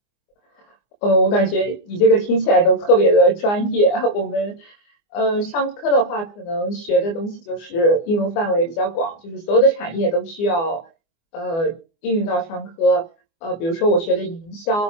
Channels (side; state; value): right; late; 24 ms